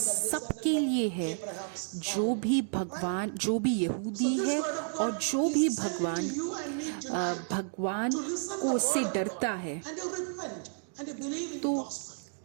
लिए है, जो भी यहूदी है और जो भी भगवान को उससे डरता है।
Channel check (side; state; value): left; silent; 57 dB below the other